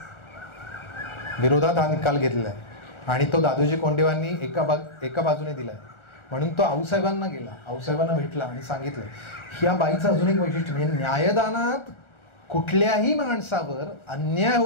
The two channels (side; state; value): right; late; 1.4 ms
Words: विरोधात हा निकाल घेतलाय आणि तो दादोजी कोंडदेवांनी एका बाजूने दिलाय. म्हणून तो आऊसाहेबांना गेला, आऊसाहेबांना भेटला आणि सांगितलं ह्या बाईचं अजून एक वैशिष्ट्य म्हणजे न्यायदानात कुठल्याही माणसावर अन्याय